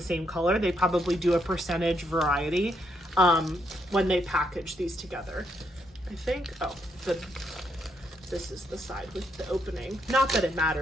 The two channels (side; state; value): both; normal; correlation 0.76